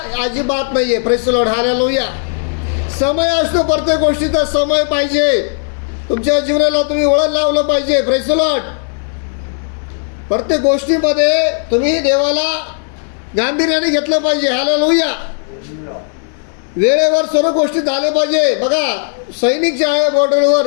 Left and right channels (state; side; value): silent; right; digital silence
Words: अजिबात नाही आहे. Praise the Lord. हालेलुया. समय असतो. प्रत्येक गोष्टीचा समय पाहिजे. तुमच्या जीवनाला तुम्ही वळण लावलं पाहिजे. Praise the Lord. प्रत्येक गोष्टीमध्ये तुम्ही देवाला गांभीर्याने घेतलं पाहिजे. हालेलुया. वेळेवर सर्व गोष्टी झाल्या पाहिजे. बघा, सैनिक जे आहे बॉर्डरवर